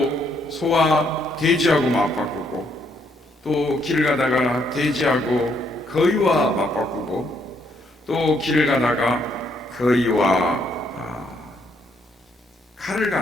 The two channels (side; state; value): both; normal; correlation 0.72